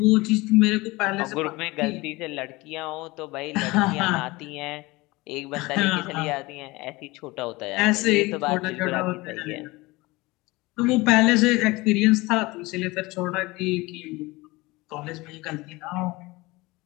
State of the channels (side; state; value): right; quieter; 22.0 dB